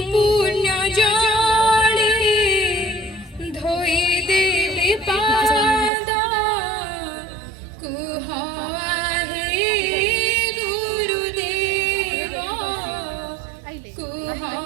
পুণ্য জলে ধোই দেবে পাদ, কুহ হে গুরুদেব, কুহ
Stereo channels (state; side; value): drops out; left; at 5.9 s